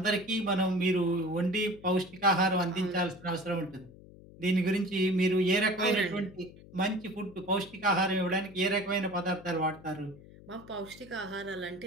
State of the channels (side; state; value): left; noise; hum, 20 dB below the sound